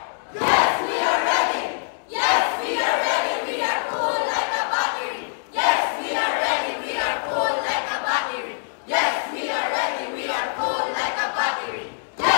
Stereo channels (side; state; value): right; silent; digital silence